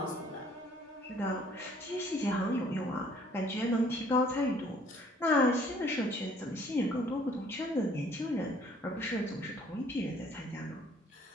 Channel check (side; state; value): both; normal; correlation 0.59